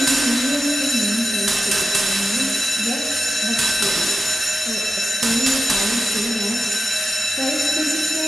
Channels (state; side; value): normal; both; correlation 0.91